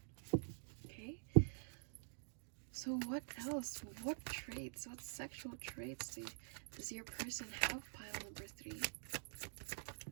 Okay? So what else? What traits? What sexual traits does your person have, pile number 3?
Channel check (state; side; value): silent; left; digital silence